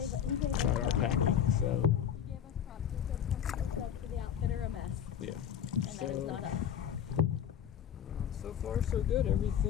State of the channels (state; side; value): quieter; right; 9.1 dB